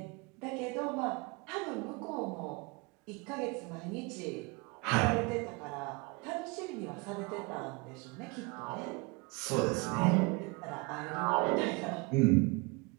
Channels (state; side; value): quieter; left; 27.3 dB